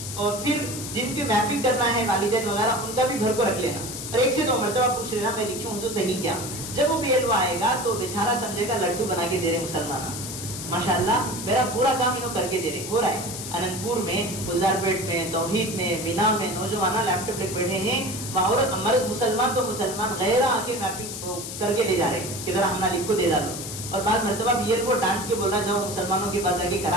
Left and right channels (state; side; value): noise; left; hiss, 8 dB below the sound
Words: اور پھر جن کی میپنگ کرنا ہے والدین وغیرہ ان کا بھی بھر کو رکھ لینا، اور 1 سے 2 مرتبہ پوچھ لینا میں لکھی ہوں صحیح کیا. جب وہ BLO آئے گا تو بیچارہ سمجھے گا لڈو بنا کے دے رہے مسلمان، ماشاءاللہ میرا پورا کام انہوں کر کے دے رہے. ہو رہا ہے اننت پور میں، گلزار پیٹ میں، توحید میں، مینا میں نوجوان لیپ ٹاپ لے بیٹھے ہیں، عورت مرد مسلمان تو مسلمان غیر آ کے میپنگ کر کے لے جا رہے ہیں کہ ذرا ہم لکھ کو دے ڈالو. اور بعض مرتبہ BLO ڈانٹ کے بولا جاؤ مسلمانوں کے پاس آ کے